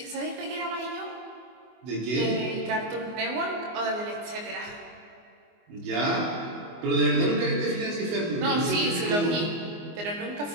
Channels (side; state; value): left; late; 24 ms